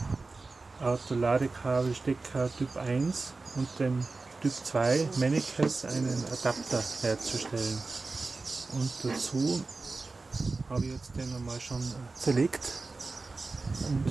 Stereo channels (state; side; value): quieter; left; 3.7 dB